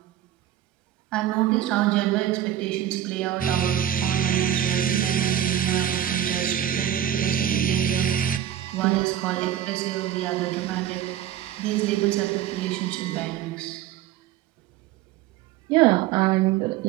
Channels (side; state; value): left; quieter; 11.3 dB